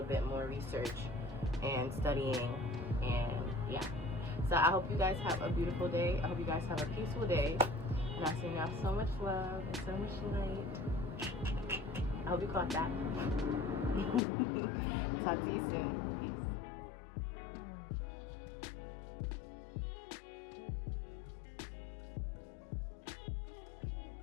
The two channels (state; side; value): drops out; right; at 14.2 s